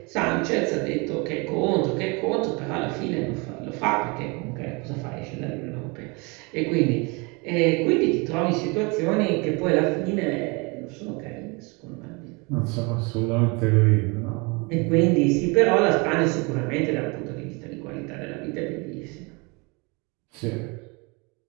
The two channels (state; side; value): quieter; left; 28.9 dB